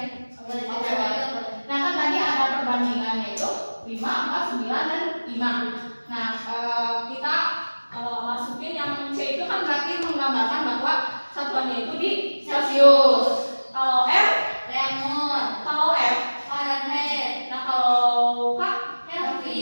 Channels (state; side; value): inverted; both; correlation -1.00